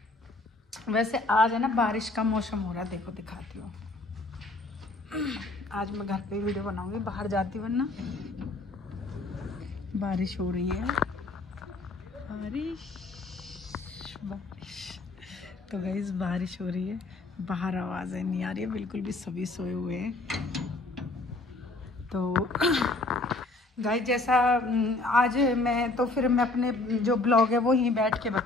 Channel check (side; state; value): right; quieter; 3.0 dB